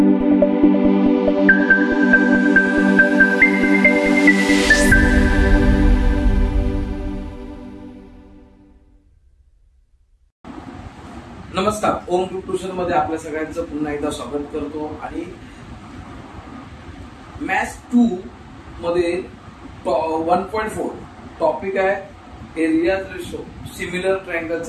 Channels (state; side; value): identical; both; correlation 1.00